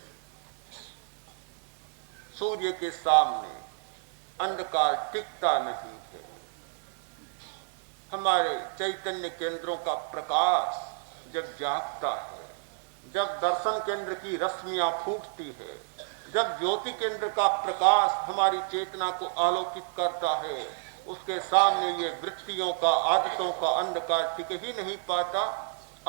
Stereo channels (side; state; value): left; silent; 58 dB below the other